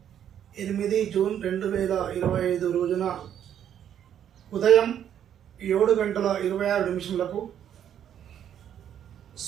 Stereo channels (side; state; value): left; quieter; 9.7 dB